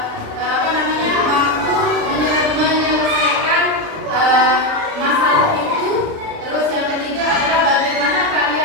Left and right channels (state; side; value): late; left; 36 ms